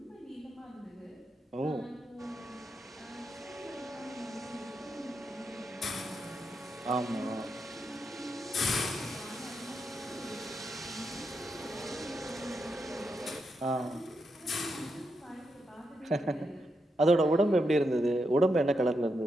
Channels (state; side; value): normal; both; correlation 0.83